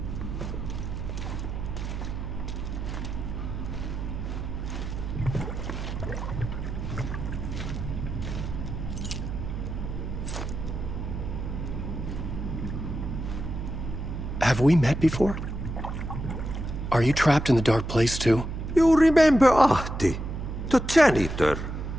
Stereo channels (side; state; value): right; noise; hum, 5 dB below the sound